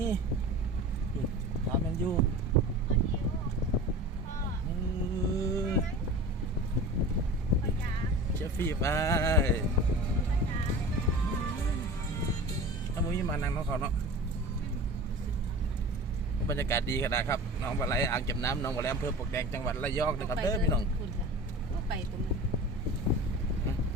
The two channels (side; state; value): both; normal; correlation 0.35